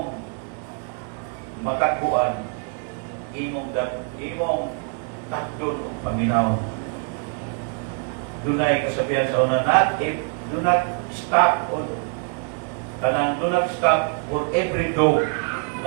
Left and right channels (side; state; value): left; quieter; 39.7 dB